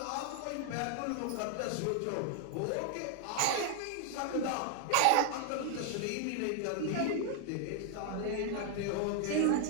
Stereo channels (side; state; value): both; different; correlation 0.00